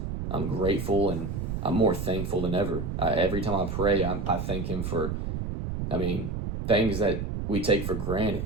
grateful, and I'm more thankful than ever. Every time I pray, I thank him for, things that we take for granted.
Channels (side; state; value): right; noise; rumble, 4 dB below the sound